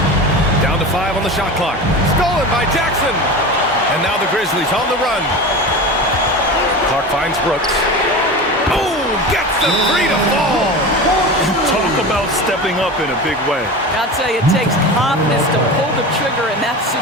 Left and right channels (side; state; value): both; normal; correlation 0.29